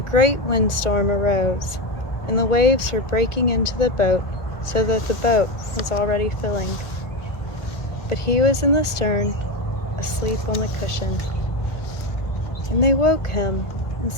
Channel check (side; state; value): right; late; 1.4 ms